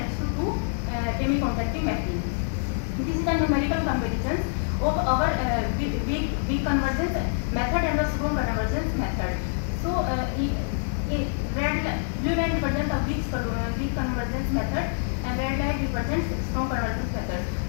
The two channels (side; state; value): right; silent; digital silence